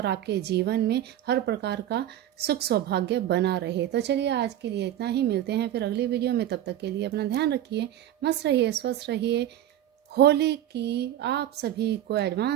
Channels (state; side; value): quieter; left; 12.0 dB